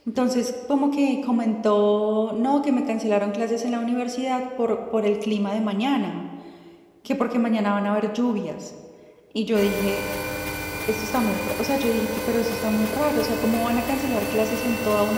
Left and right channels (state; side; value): identical; both; correlation 1.00